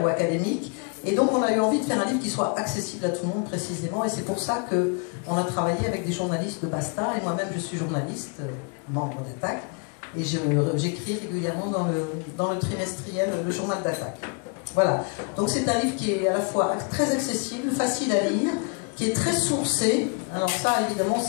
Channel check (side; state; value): right; quieter; 36.9 dB